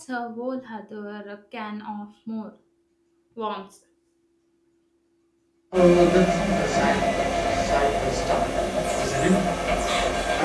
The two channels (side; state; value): both; identical; correlation 1.00